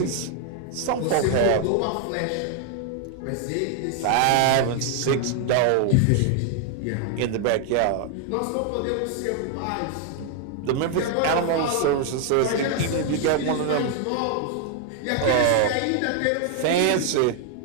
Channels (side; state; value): both; different; correlation 0.00